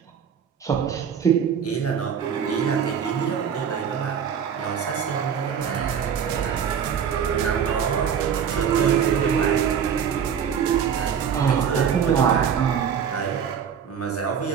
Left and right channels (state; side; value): quieter; left; 7.7 dB